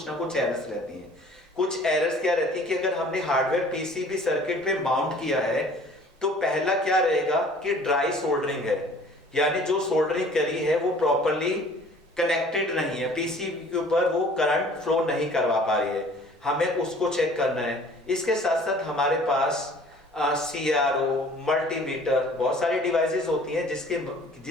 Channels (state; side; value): normal; both; correlation 0.51